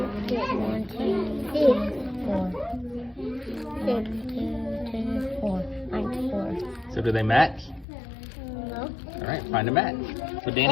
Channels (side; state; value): right; drops out; at 7.9 s